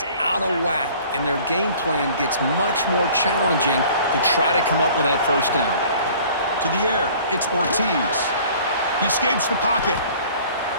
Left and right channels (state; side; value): inverted; both; correlation -0.50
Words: out of whack, and their game plan gets much more challenging to try to come up with that first down. To the air, it's Ortiz. He escapes the pocket.